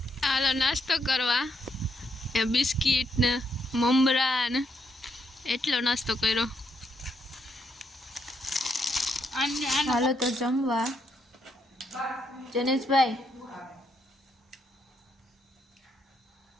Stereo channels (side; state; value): both; normal; correlation 0.77